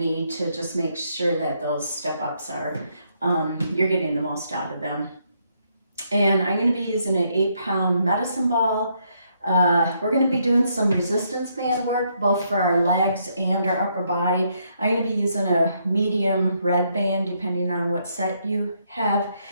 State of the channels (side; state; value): both; inverted; correlation -0.74